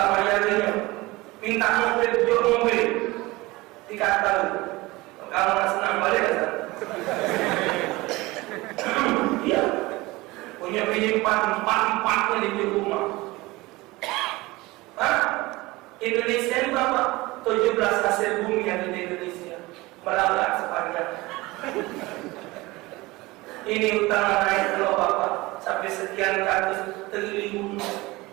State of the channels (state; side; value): quieter; left; 21.2 dB